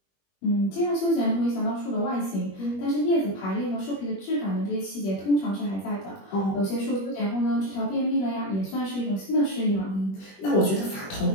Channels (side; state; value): right; late; 21 ms